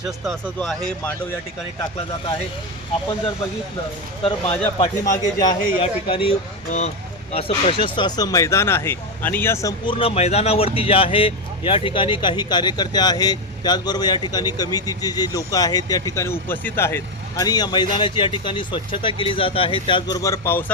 असं जो आहे मांडव या ठिकाणी टाकला जात आहे. आपण जर बघितलं तर माझ्या पाठीमागे जे आहे या ठिकाणी असं प्रशस्त असं मैदान आहे आणि या संपूर्ण मैदानावरती जे आहे या ठिकाणी काही कार्यकर्ते आहेत, त्याचबरोबर या ठिकाणी कमिटीचे जे लोक आहेत त्या ठिकाणी उपस्थित आहेत आणि या मैदानाची या ठिकाणी स्वच्छता केली जात आहे. त्याचबरोबर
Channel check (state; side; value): normal; both; correlation 0.09